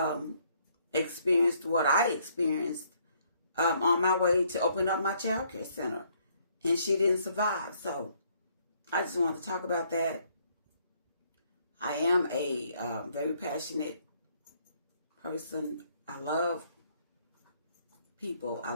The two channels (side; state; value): both; inverted; correlation -0.67